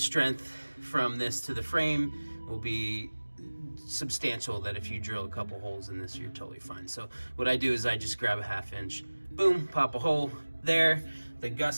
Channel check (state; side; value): inverted; both; correlation -1.00